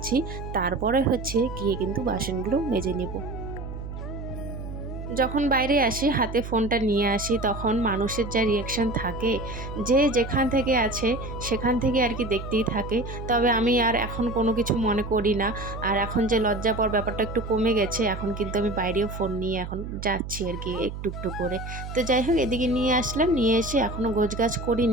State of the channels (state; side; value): noise; right; hum, 8 dB below the sound